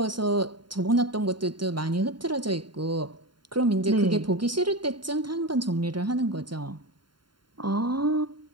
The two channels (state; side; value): late; left; 0.72 ms